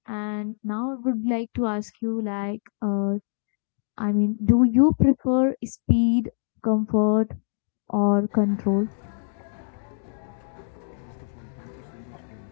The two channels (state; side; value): silent; right; digital silence